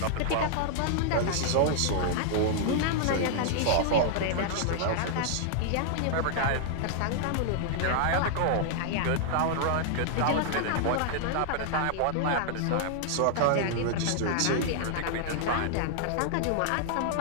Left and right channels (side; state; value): both; different; correlation -0.01